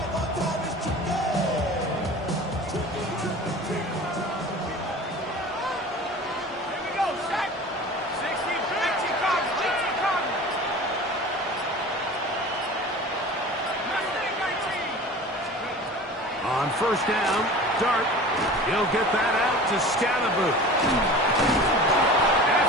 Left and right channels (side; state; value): both; normal; correlation 0.39